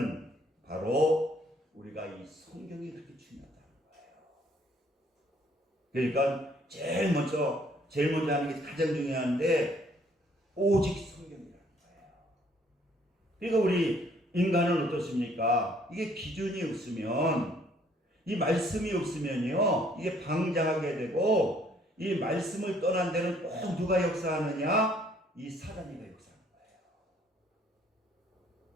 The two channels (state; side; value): normal; both; correlation 0.63